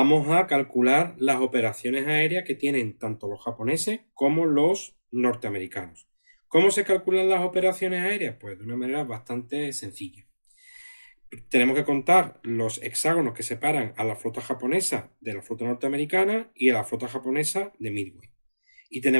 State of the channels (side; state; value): both; inverted; correlation -1.00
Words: a calcular las operaciones aéreas que tienen tanto los japoneses como los norteamericanos. ¿Cómo se calculan las operaciones aéreas? Pues de una manera bastante sencilla. Tenemos que contar los hexágonos que separan a la flota japonesa de la flota norteamericana y a la flota japonesa de Midway. Y